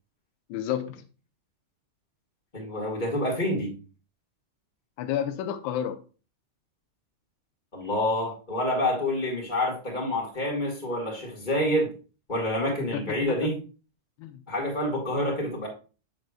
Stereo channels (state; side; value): late; right; 2.2 ms